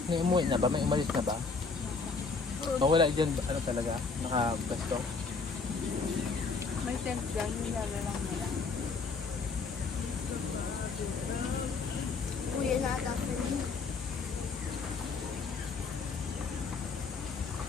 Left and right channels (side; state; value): right; quieter; 4.5 dB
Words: May umuwi na ba? May umalis na ba? Mawala dyan, ano talaga? Nakabasto? May tent dyan, nilala lang nila. Uwi na ata sila.